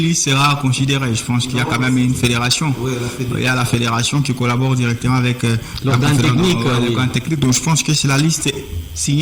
liste sera considérée. Je pense qu'il y a quand même une fédération. Oui, il y a la fédération qui collabore directement avec l'organe technique. Donc je pense que c'est la liste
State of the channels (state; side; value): identical; both; correlation 1.00